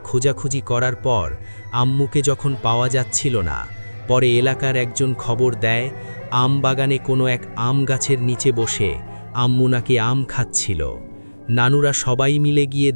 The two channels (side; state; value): both; inverted; correlation -1.00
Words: খোঁজাখুঁজি করার পর আম্মুকে যখন পাওয়া যাচ্ছিল না, পরে এলাকার একজন খবর দেয় আম বাগানে কোনো এক আম গাছের নিচে বসে আম্মু নাকি আম খাচ্ছিল। নানুরা সবাই মিলে গিয়ে